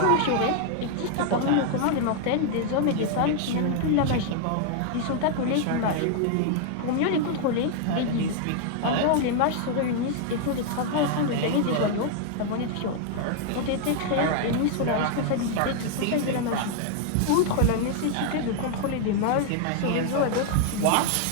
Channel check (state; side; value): different; both; correlation 0.00